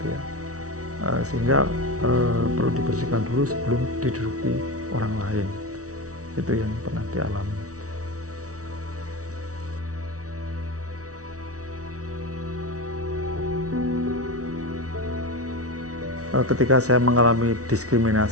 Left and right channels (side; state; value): left; late; 0.66 ms